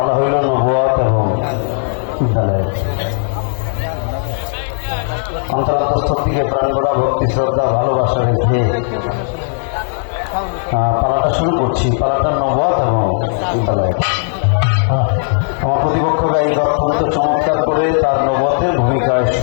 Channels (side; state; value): right; silent; digital silence